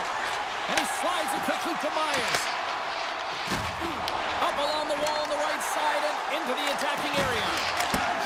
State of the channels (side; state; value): both; identical; correlation 1.00